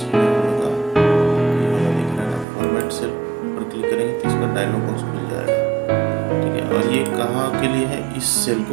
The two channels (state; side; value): drops out; left; at 2.5 s